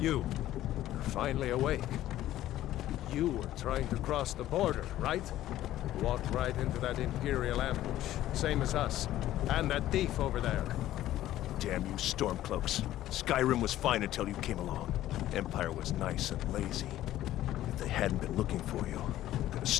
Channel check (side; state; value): right; quieter; 13.8 dB